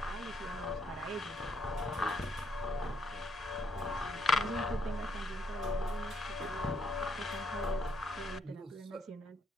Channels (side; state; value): both; normal; correlation 0.73